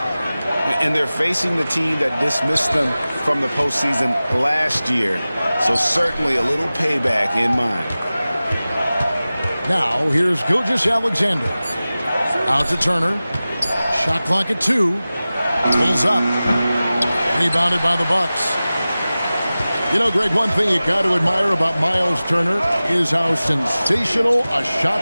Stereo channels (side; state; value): both; inverted; correlation -0.97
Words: And they're facing the team that dismissed them from the postseason last year. So certainly a little payback in mind. Now, here's Gilgeous-Alexander. Out to Turner. Shot clock at 2. Pulls up. Rebounded by the Bucks. You know, Greg, one thing you got to admire about Miles Turner is how sensational a